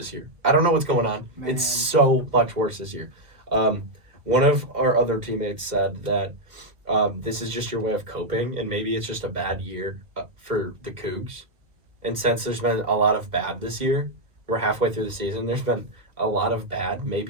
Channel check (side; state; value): left; late; 1.7 ms